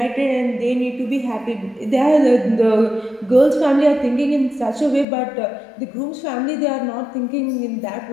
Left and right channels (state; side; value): drops out; right; at 5.1 s